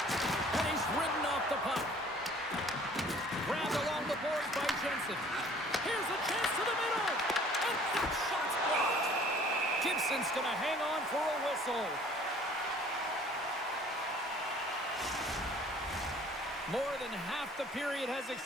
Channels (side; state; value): both; normal; correlation 0.53